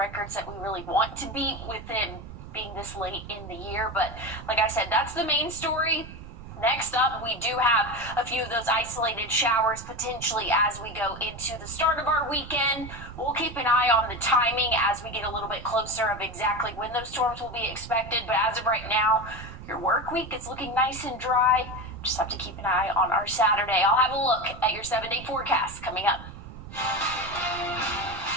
that we really want to beat with it being this late in the year, but like I said, that's the main story. Next up, we do have a few of those isolated showers potentially as we go into the start of our weekend. We'll keep an eye on the timing as we get a little bit closer of exactly when those storms will be expected. But as of right now, your work week is looking nice and dry. Just have to keep an eye on our Saturday. I'll have a look at your 7-day forecast coming up.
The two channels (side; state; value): right; noise; rumble, 14 dB below the sound